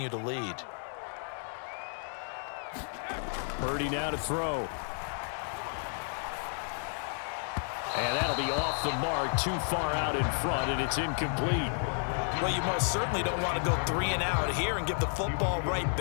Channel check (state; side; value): silent; right; 56 dB below the other